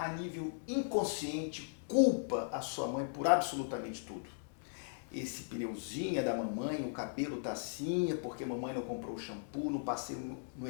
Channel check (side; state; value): right; silent; digital silence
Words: nível inconsciente, culpa a sua mãe por absolutamente tudo. Esse pneuzinho é da mamãe, o cabelo tá assim, é porque a mamãe não comprou o shampoo, não passei no